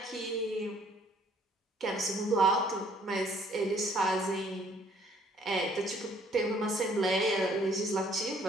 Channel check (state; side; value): normal; both; correlation 0.61